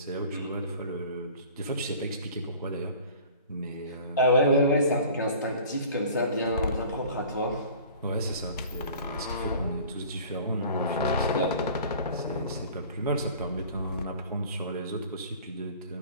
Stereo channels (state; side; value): inverted; both; correlation -0.46